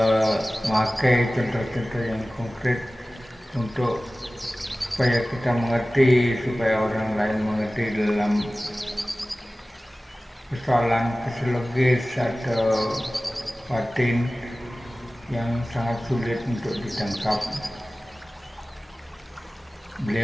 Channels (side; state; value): both; normal; correlation 0.97